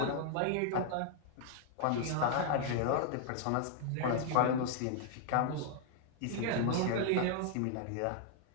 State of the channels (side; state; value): both; different; correlation -0.01